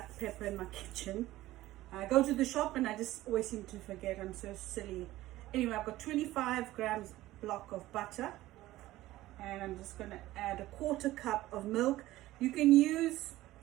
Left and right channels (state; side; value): quieter; left; 16.3 dB